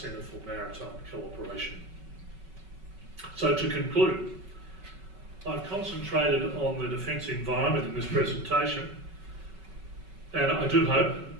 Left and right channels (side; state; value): left; late; 5.3 ms